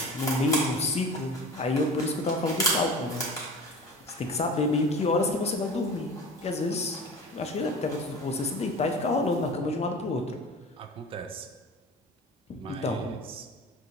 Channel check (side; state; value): both; normal; correlation 0.36